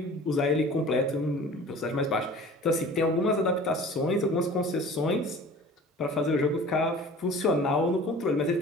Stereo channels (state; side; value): normal; both; correlation 0.44